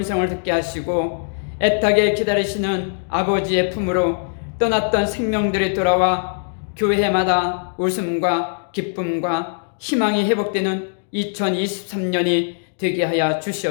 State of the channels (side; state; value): right; silent; digital silence